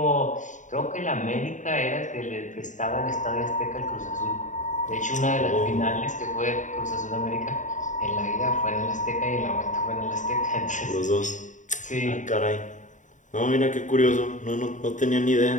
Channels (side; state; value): right; late; 0.36 ms